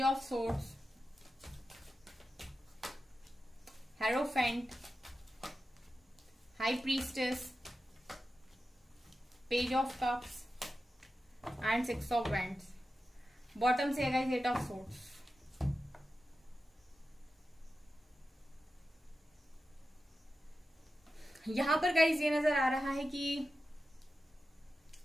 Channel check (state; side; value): normal; both; correlation 0.92